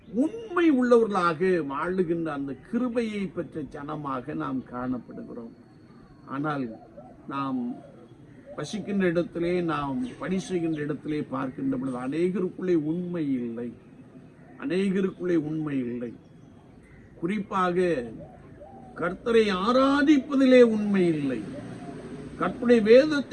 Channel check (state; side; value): identical; both; correlation 1.00